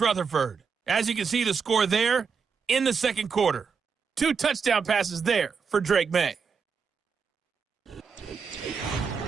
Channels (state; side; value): quieter; left; 5.8 dB